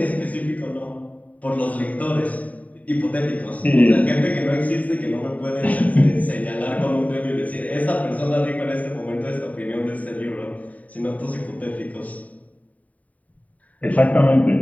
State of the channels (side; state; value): right; late; 0.070 ms